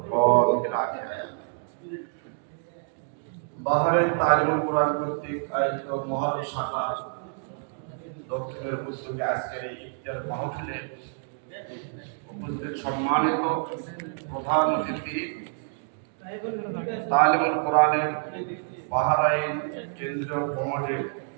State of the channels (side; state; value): left; silent; digital silence